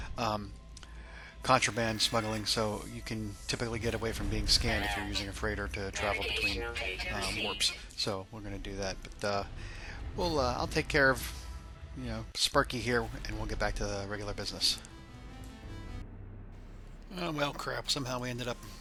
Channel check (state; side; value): identical; both; correlation 1.00